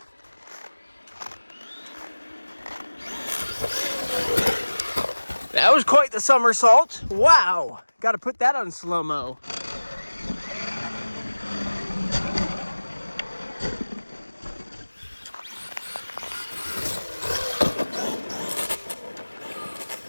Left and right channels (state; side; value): inverted; both; correlation -1.00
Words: That was quite the somersault. Wow, got to put that on slow-mo.